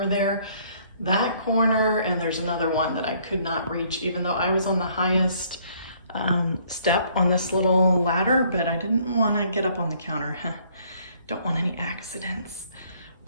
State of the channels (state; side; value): inverted; both; correlation -0.63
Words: there. That corner, and there's another one that I could not reach, even though I was on the highest step on this little ladder, but I didn't want to get up on the counter. Don't want any accidents.